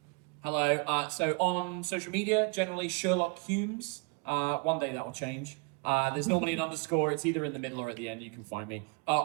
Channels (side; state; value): left; quieter; 31.0 dB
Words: Hello. So on social media, generally Sherlock Hulmes. One day that will change. There's normally an underscore. It's either in the middle or at the end. You can find me.